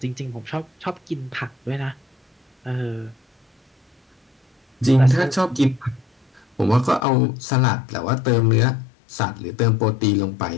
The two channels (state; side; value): drops out; right; at 7.1 s